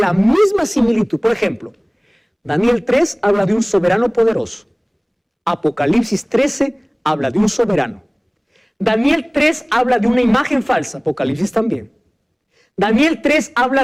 misma similitud. Por ejemplo, Daniel 3 habla de un soberano poderoso. Apocalipsis 13 habla de un soberano. Daniel 3 habla de una imagen falsa, Apocalipsis también. Daniel 3 habla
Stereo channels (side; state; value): both; identical; correlation 1.00